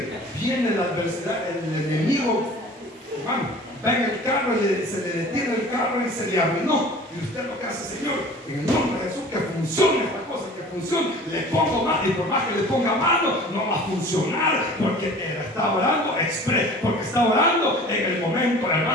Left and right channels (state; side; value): normal; both; correlation 0.44